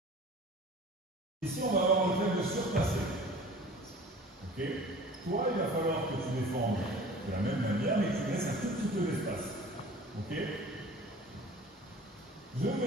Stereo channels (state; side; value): normal; both; correlation 0.44